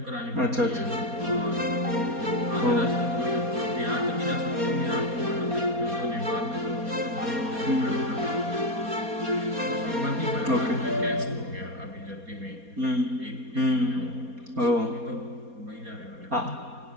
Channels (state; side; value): late; left; 4.2 ms